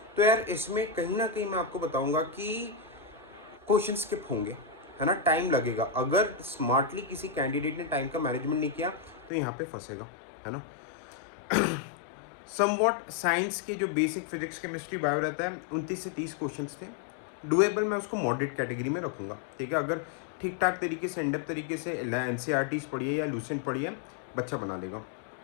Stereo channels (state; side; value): drops out; right; at 9.3 s